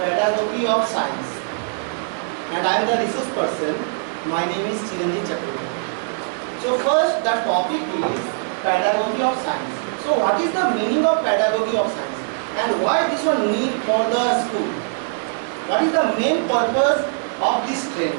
of science, and I am the resource person. My name is Chiranjit Chakraborty. So first, the topic is pedagogy of science. So what is the meaning of pedagogy of science, and why this one need for the school? What is the main purpose of this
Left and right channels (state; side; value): silent; left; digital silence